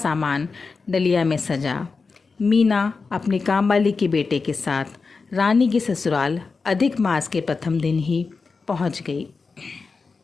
डलिया में सजा। मीना अपनी कामवाली के बेटे के साथ रानी के ससुराल अधिक मास के प्रथम दिन ही पहुंच गई,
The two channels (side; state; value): right; quieter; 4.5 dB